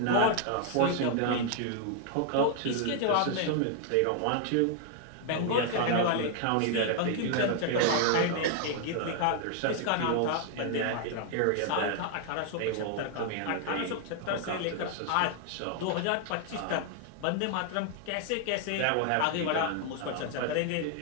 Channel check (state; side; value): different; both; correlation 0.00